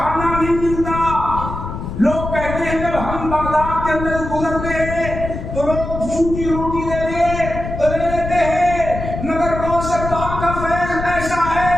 نہیں ملتا۔ لوگ کہتے ہیں جب ہم بغداد کے اندر گزرتے ہیں تو لوگ سوکھی روٹی دے دے تو لے لیتے ہیں، مگر غوث پاک کا فیض ایسا ہے،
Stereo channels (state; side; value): noise; left; rumble, 7 dB below the sound